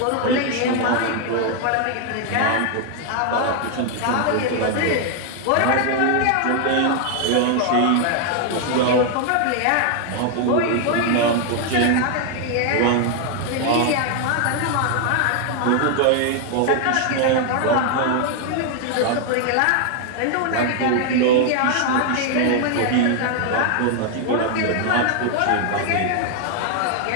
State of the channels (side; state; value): both; different; correlation 0.00